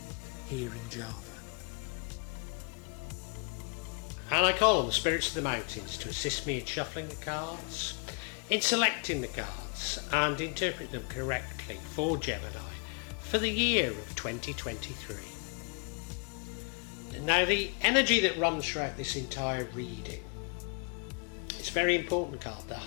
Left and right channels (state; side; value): quieter; right; 34.8 dB